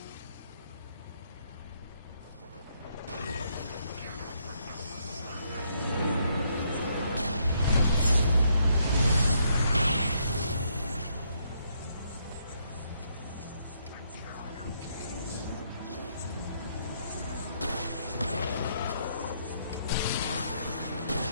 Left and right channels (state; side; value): inverted; both; correlation -0.73